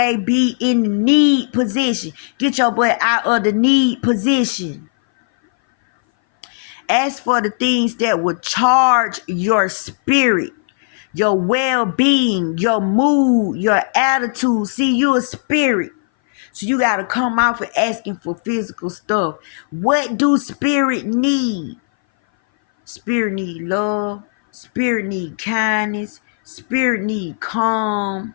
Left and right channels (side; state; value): right; silent; 60 dB below the other